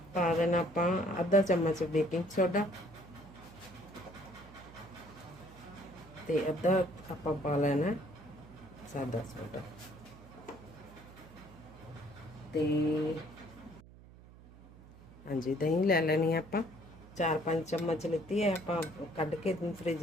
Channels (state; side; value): noise; right; hum, 20 dB below the sound